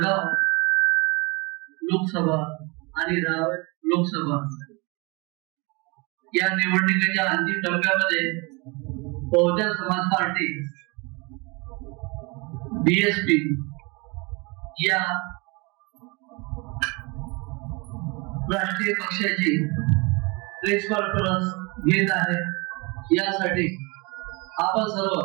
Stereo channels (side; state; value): left; quieter; 28.0 dB